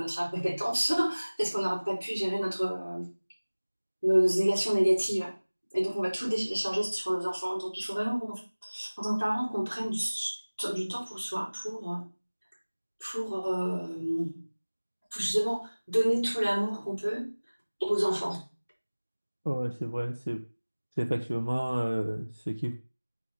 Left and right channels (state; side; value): inverted; both; correlation -1.00